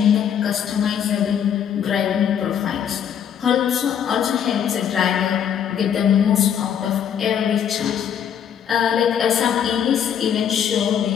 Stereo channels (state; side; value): quieter; right; 8.7 dB